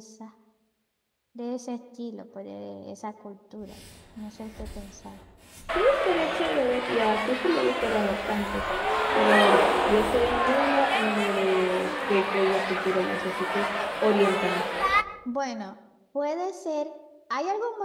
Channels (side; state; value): both; identical; correlation 1.00